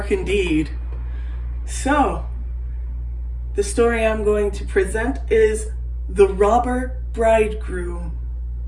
indeed. So, the story I'm going to present is The Robber Bridegroom.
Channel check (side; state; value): both; identical; correlation 1.00